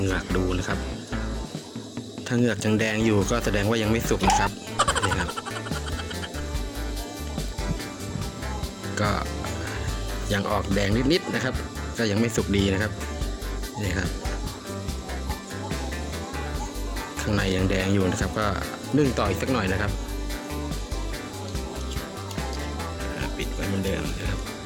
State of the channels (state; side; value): identical; both; correlation 1.00